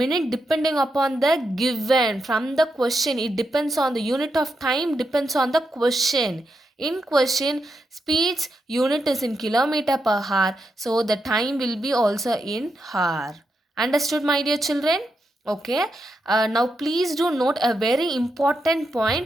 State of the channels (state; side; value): normal; both; correlation 0.84